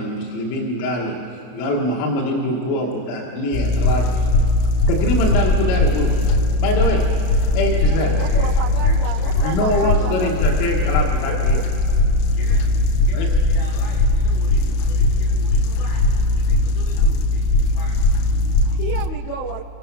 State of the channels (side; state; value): right; late; 32 ms